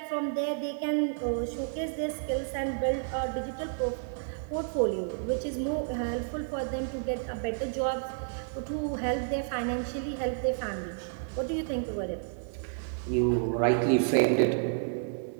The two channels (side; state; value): left; silent; 57 dB below the other